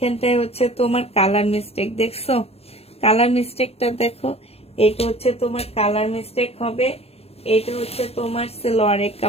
হচ্ছে তোমার কালার মিস্টেক, দেখছো কালার মিস্টেকটা দেখো। এটা হচ্ছে তোমার কালার মিস্টেক হবে। এটা হচ্ছে তোমার সালোয়ারের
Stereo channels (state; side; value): late; right; 0.29 ms